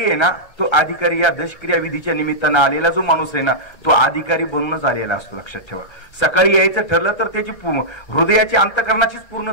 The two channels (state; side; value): late; right; 1.3 ms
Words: ना, तो अधिकारी या दशक्रिया विधीच्या निमित्तानं आलेला जो माणूस आहे ना, तो अधिकारी बनूनच आलेला असतो. लक्षात ठेवा. सकाळी यायचं ठरलं तर त्याची हृदयाची अंतःकरणाचीच